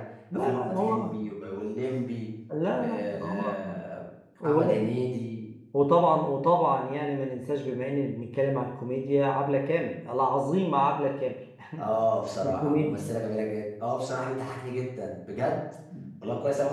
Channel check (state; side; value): identical; both; correlation 1.00